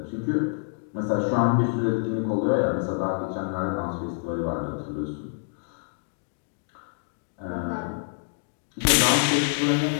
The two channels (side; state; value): right; silent; digital silence